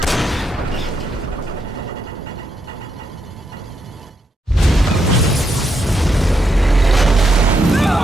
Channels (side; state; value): both; normal; correlation 0.80